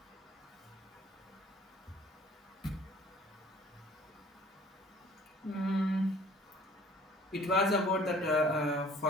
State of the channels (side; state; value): both; normal; correlation 0.52